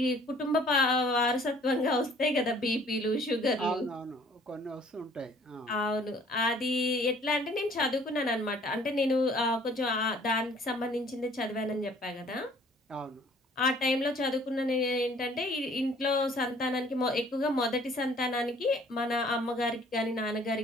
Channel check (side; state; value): both; normal; correlation 0.56